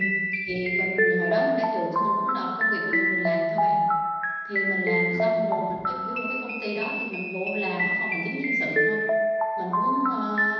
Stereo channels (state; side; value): identical; both; correlation 1.00